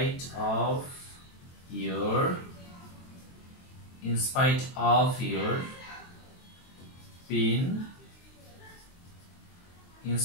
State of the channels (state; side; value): late; right; 23 ms